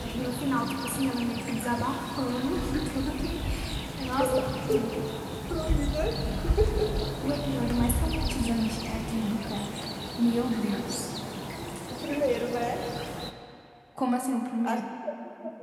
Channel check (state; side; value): identical; both; correlation 1.00